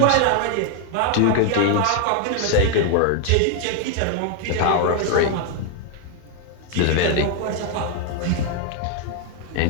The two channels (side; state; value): both; different; correlation 0.01